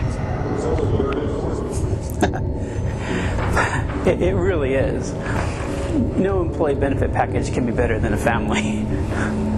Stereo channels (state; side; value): identical; both; correlation 1.00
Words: It really is. No employee benefit package can be better than a family.